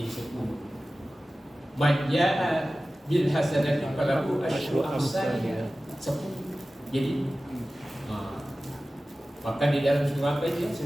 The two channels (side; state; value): both; normal; correlation 0.96